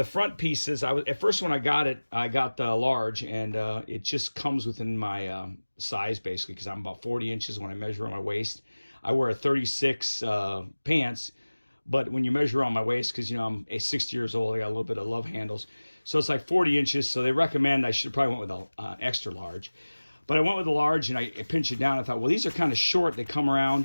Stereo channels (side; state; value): both; inverted; correlation -1.00